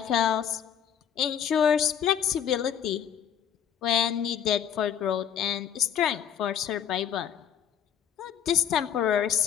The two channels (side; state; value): right; quieter; 8.9 dB